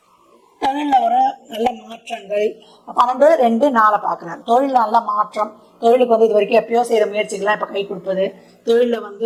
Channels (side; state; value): both; identical; correlation 1.00